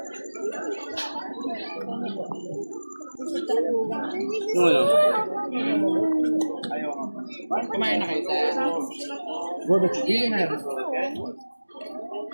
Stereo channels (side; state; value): both; inverted; correlation -1.00